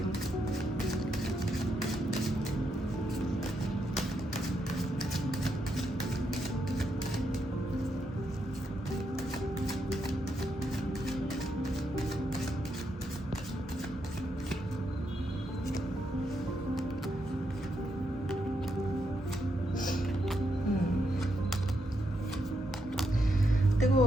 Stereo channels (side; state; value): both; normal; correlation 0.81